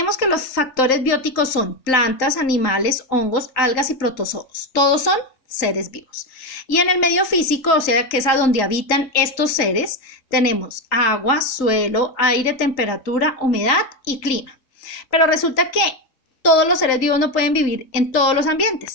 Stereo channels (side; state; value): right; late; 3.8 ms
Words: que los factores bióticos son plantas, animales, hongos, algas y protozoos. Todos son seres vivos. Y en el medio físico, o sea, que es a donde habitan estos seres, tenemos agua, suelo, aire, temperatura, humedad y clima. Pero resulta que todos los seres vivos no pueden vivir en todos los